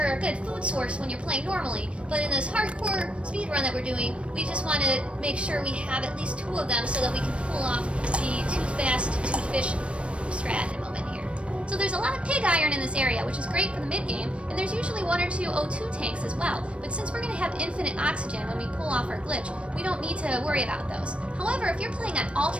a good food source when you're playing normally, but in this hardcore speedrun that we're doing, we just want to make sure we have at least 2 of them so that we can pull off the too fast, too fish strat in a moment here. So there's a lot of pig iron in this area, which is great for the mid-game, and there's usually 1 or 2 O2 tanks as well, but since we're going to have infinite oxygen when we pull off our glitch, we don't need to worry about those. However, if you're playing on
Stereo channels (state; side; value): late; left; 0.060 ms